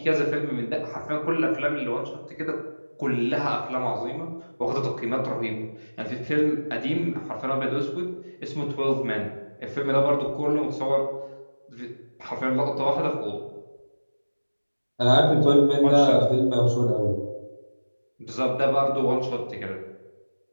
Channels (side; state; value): both; inverted; correlation -1.00